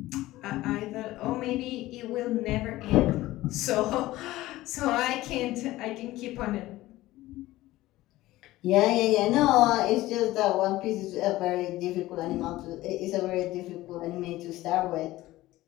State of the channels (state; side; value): quieter; right; 17.0 dB